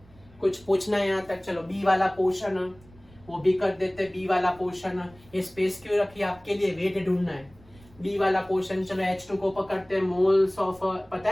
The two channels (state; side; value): noise; right; rumble, 25 dB below the sound